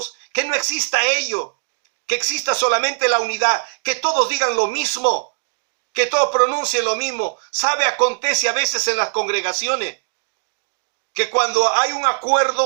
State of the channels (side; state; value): left; silent; digital silence